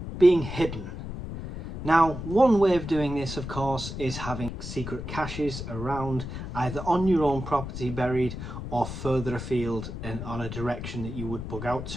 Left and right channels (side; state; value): left; noise; rumble, 8 dB below the sound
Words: being hidden. Now, one way of doing this, of course, is having secret caches around, either on your own property buried or further afield and on a direction that you would bug out